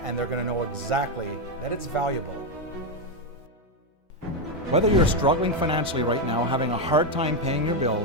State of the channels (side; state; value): both; normal; correlation 0.06